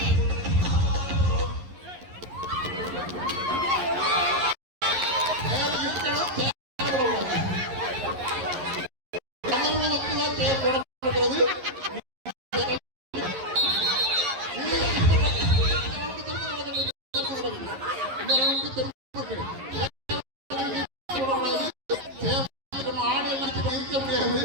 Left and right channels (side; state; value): left; late; 11 ms